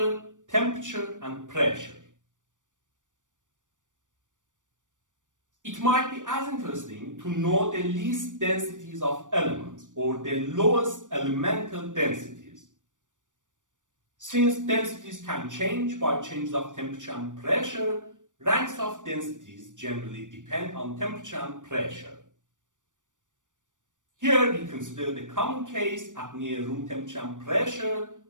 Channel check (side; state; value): left; late; 0.87 ms